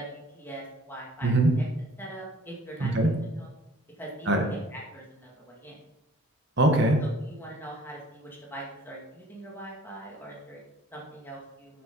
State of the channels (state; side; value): normal; both; correlation 0.54